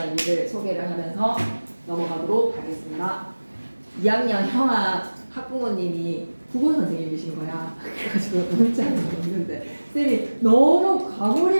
일을 소개를 하면서 넘어가도록 하겠습니다. 2학년 형아 학부모님이 국어 선생님이신 거야. 그래가지고 문자를 읽는데 쌤이 너무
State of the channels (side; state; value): both; inverted; correlation -1.00